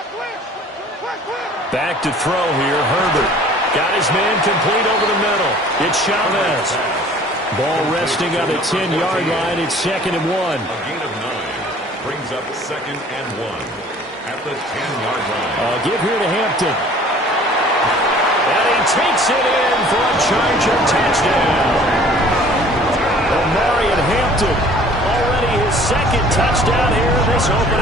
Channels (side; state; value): both; normal; correlation 0.51